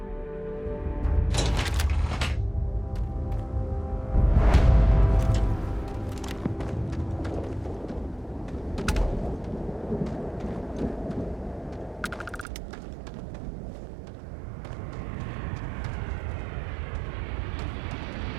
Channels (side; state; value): left; drops out; at 12.5 s